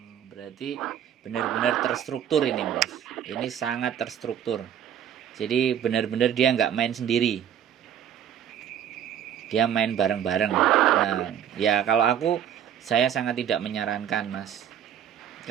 Berarti benar-benar terstruktur ini Mas. Ini sangat terstruktur. Jadi benar-benar dia nggak main sendiri. Dia main bareng-bareng. Nah, ya kalau saya sangat tidak menyarankan Mas.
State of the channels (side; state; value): left; quieter; 9.6 dB